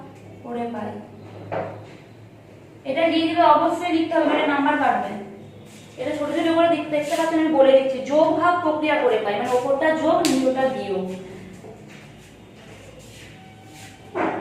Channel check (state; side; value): identical; both; correlation 1.00